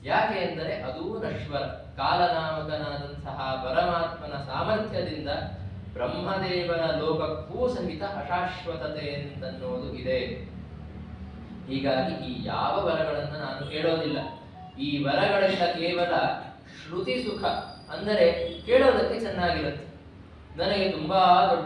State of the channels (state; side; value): identical; both; correlation 1.00